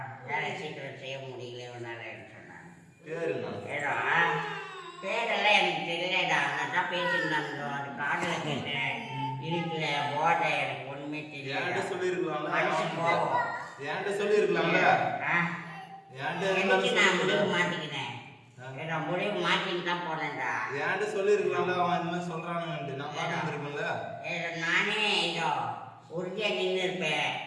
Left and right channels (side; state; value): both; identical; correlation 1.00